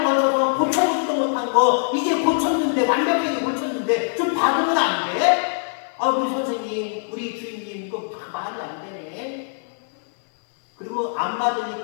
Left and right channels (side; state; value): right; silent; digital silence